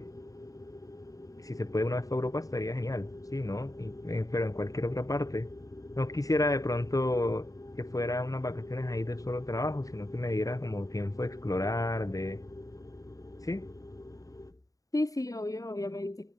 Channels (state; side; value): late; right; 0.17 ms